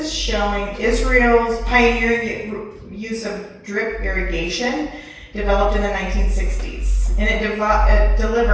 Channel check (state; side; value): identical; both; correlation 1.00